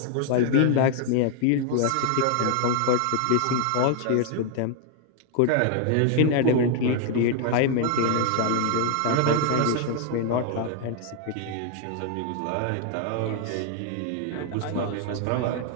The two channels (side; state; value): both; different; correlation 0.00